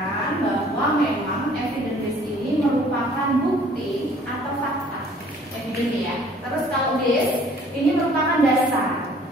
bahwa memang evidence based ini merupakan bukti atau fakta. Evidence ya. Terus kalau base ini merupakan dasar.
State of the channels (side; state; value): both; normal; correlation 0.55